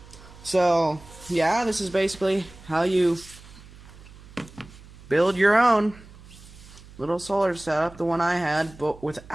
So yeah, this is basically how you build your own little solar setup, the one I had, but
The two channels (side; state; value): right; noise; hum, 20 dB below the sound